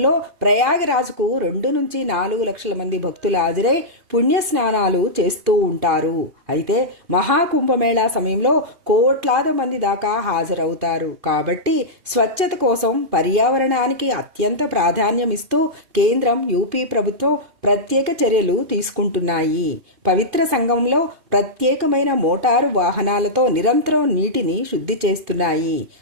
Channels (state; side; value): late; left; 2.5 ms